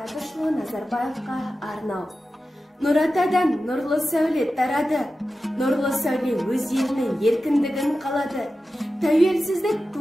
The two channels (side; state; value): both; normal; correlation 0.93